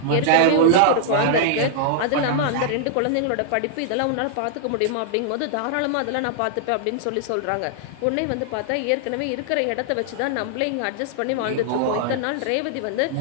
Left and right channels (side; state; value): both; different; correlation -0.01